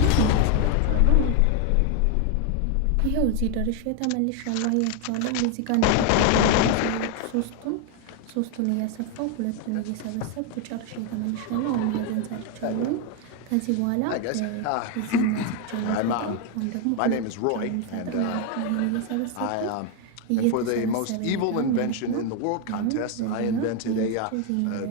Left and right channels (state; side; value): different; both; correlation 0.01